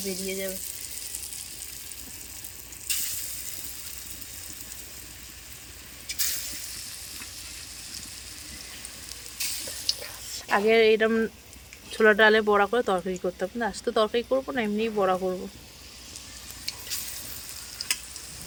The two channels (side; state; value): both; identical; correlation 1.00